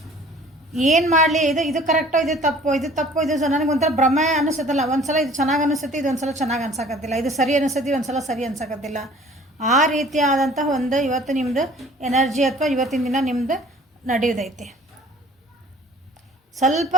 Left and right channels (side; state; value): both; normal; correlation 0.50